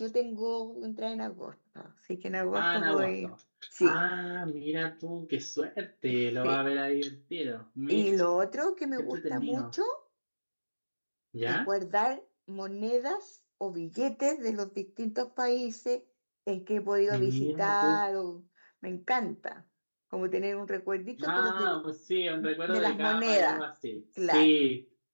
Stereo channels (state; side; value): inverted; both; correlation -1.00